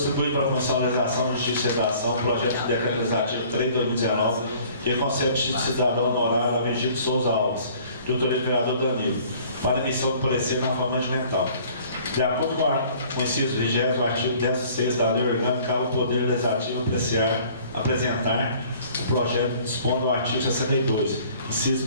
para a Comissão de Legislação, Justiça e Redação o projeto de decreto legislativo 3 de 2019, que concede cidadão honorário a Vigílio de Souza Alves, de autoria do vereador Danilo, para emissão de parecer na forma regimental. De acordo com o inciso 20º, o artigo 16 da Lei Orgânica, cabe ao Poder Legislativo apresentar o projeto dispondo o artigo 62, inciso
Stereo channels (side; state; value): both; inverted; correlation -0.53